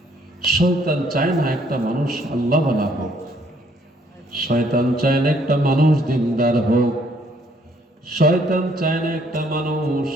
শয়তান চায় না একটা মানুষ আল্লাহওয়ালা হোক, শয়তান চায় না একটা মানুষ দিনদার হোক, শয়তান চায় না একটা মানুষ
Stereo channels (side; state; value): both; normal; correlation 0.66